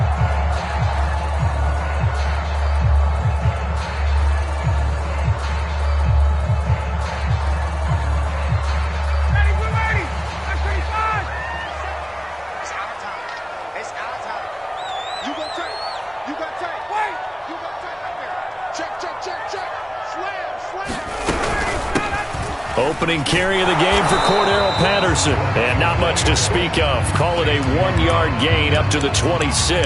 Opening carry of the game for Cordero Patterson. And not much to speak of. Call it a 1-yard gain up to the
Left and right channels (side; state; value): both; identical; correlation 1.00